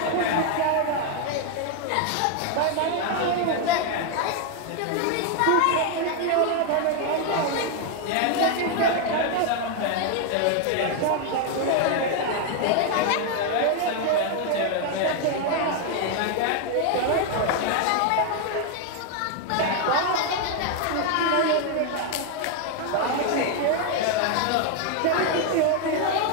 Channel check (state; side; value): different; both; correlation 0.01